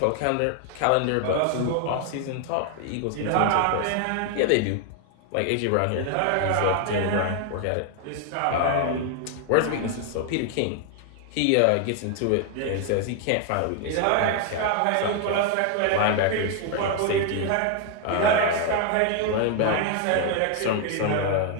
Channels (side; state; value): both; different; correlation 0.00